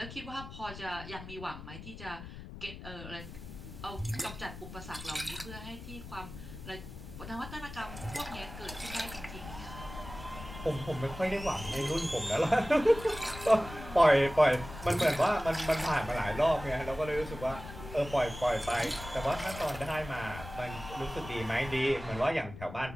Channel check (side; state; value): left; noise; rumble, 12 dB below the sound